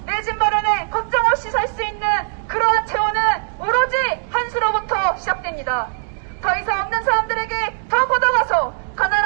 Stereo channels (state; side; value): silent; left; digital silence